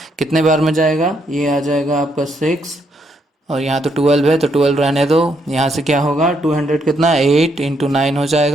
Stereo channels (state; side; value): normal; both; correlation 0.75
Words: कितने बार में जाएगा, ये आ जाएगा आपका 6, और यहाँ तो 12 है तो 12 रहने दो। यहाँ से क्या होगा 200 कितना 8 इंटू 9 हो